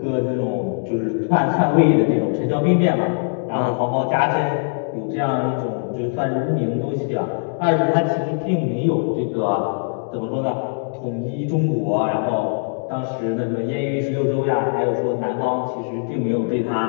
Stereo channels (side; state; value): right; silent; digital silence